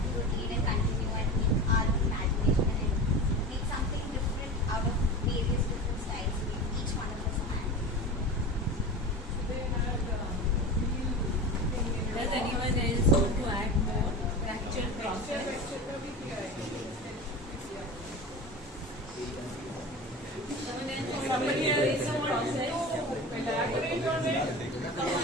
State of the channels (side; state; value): both; normal; correlation 0.31